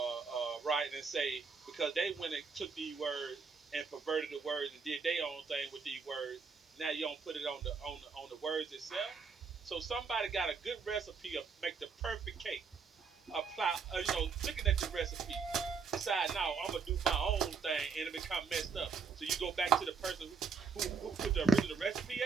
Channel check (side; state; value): left; quieter; 5.3 dB